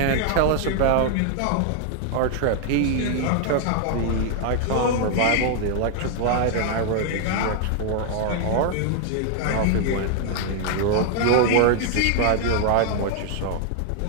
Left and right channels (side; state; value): both; different; correlation 0.00